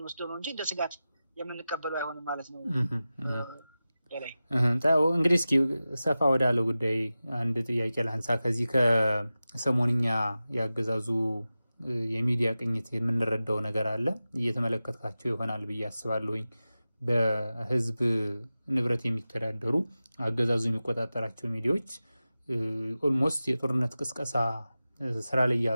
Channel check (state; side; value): inverted; both; correlation -0.95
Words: ነው እንጂ እንደ ስጋት የምንቀበለው አይሆንም ማለት ነው። እንግዲህ እስኪ ሰፋ ወዳለው ጉዳይ አንድ ጥያቄ ላንሳ። ከዚህ ከሰሞንኛ ያገዛዙ የሚዲያ ቅኝት የምንረዳው ነገር አለ እየተመለከታቸው ይሆናል ብዬ አስባለሁኝ። በህዝብ ንብረት የሚተዳደሩ አገዛዙ የሚቆጣጠራቸው ሚዲያዎች ኦልሞስት የጦርነት ቅስቀሳ ስራ ላይ